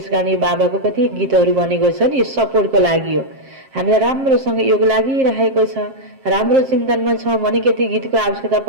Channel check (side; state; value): left; late; 7.5 ms